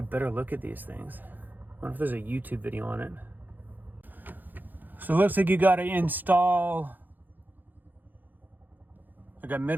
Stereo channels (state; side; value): late; left; 0.087 ms